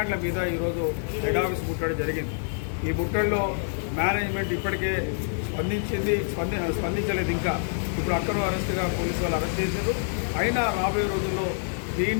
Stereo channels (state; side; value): silent; right; digital silence